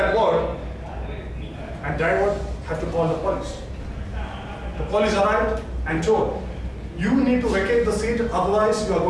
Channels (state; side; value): identical; both; correlation 1.00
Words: word, and driver had to call the police. The police arrived and told, you need to vacate the seat, otherwise you are